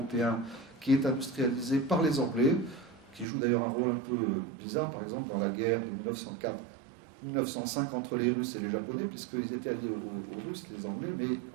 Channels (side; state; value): left; drops out; at 3.2 s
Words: qui est industrialisé par les Anglais, qui joue d'ailleurs un rôle un peu bizarre, par exemple, dans la guerre de 1904-1905 entre les Russes et les Japonais, puisqu'ils étaient alliés aux Russes, les Anglais, mais